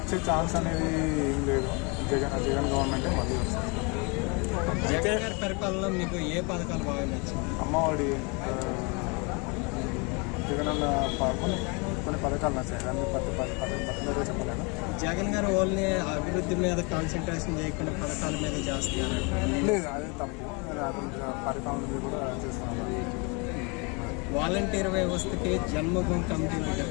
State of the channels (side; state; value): right; quieter; 31.2 dB